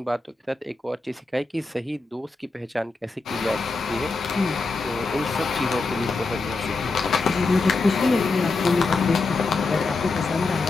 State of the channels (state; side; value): quieter; right; 3.7 dB